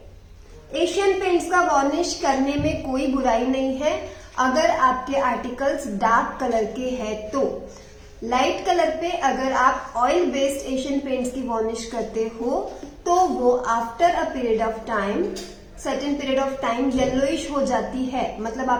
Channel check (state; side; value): identical; both; correlation 1.00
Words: एशियन पेंट्स का वॉर्निश करने में कोई बुराई नहीं है अगर आपके आर्टिकल्स डार्क कलर के हैं तो। लाइट कलर पे अगर आप ऑयल बेस्ड एशियन पेंट्स की वॉर्निश करते हो तो वो after a period of time, certain period of time yellowish हो जाती है, मतलब